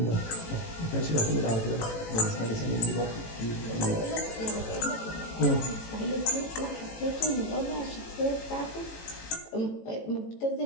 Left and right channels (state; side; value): late; right; 18 ms